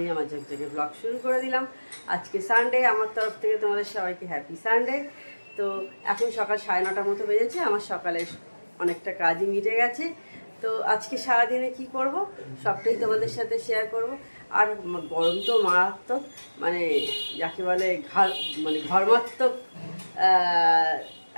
আমার ঝকঝকে ব্লগ শুরু করে দিলাম। আজকে সানডে, আমার তরফ থেকে তোমাদের সবাইকে হ্যাপি সানডে। তো এখন সকাল 9:30 মতো বেজেছে, আমার সকালে অনেকটা কাজই মিটে গেছে। তো আজকে সারাদিনে কি করব সবটাই তোমাদের সাথে শেয়ার করব। আর গরম তো মারাত্মক, মানে যাকে বলে ঘর্মাত্মক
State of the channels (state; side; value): inverted; both; correlation -1.00